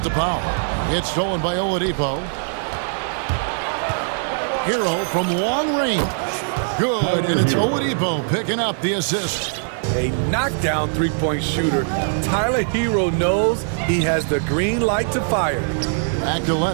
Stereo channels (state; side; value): silent; left; digital silence